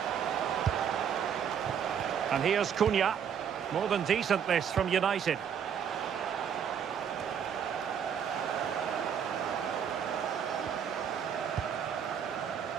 And here's Cunha. More than decent this from United.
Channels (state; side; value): quieter; left; 8.0 dB